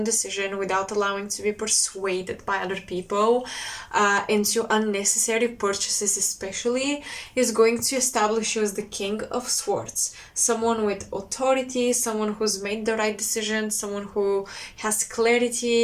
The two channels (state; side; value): identical; both; correlation 1.00